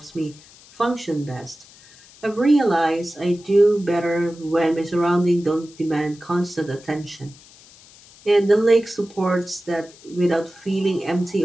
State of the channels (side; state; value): left; noise; hiss, 24 dB below the sound